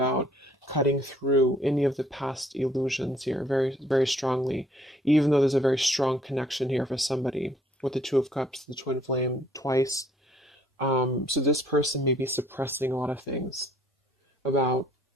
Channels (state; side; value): normal; both; correlation 0.62